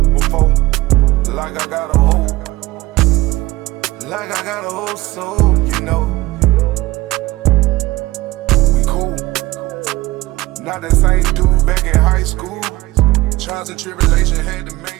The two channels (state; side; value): quieter; left; 18.7 dB